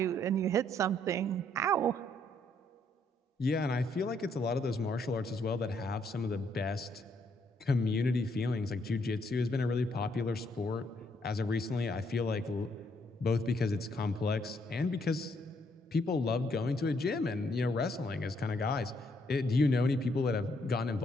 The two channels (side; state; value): both; normal; correlation 0.71